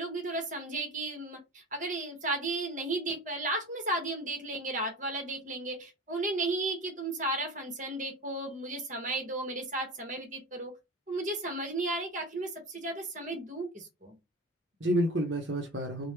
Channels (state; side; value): normal; both; correlation 0.30